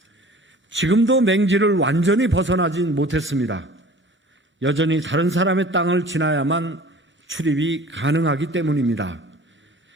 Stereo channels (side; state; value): both; normal; correlation 0.45